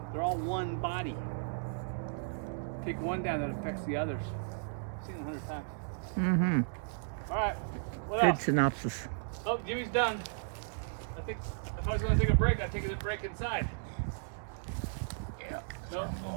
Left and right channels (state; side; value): silent; left; digital silence